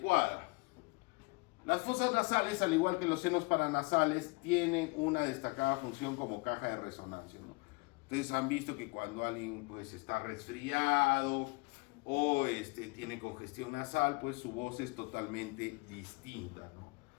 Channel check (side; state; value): right; quieter; 27.2 dB